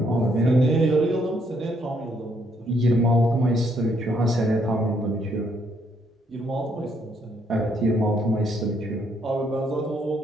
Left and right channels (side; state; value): both; normal; correlation 0.71